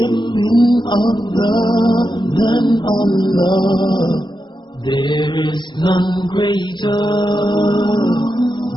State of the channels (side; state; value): right; late; 0.22 ms